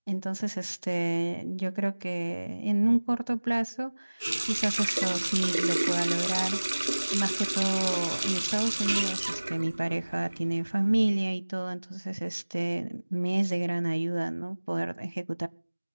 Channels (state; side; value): inverted; both; correlation -1.00